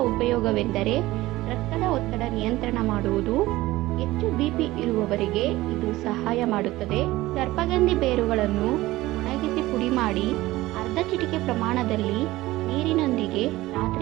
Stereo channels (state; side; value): quieter; left; 17.8 dB